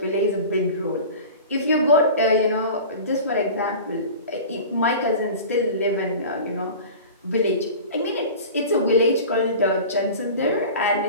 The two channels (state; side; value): inverted; both; correlation -0.36